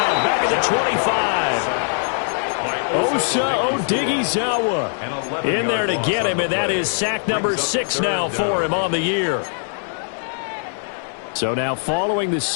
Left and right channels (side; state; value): right; silent; digital silence